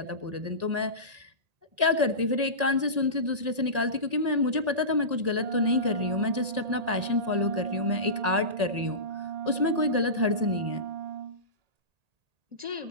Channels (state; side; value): late; left; 1.8 ms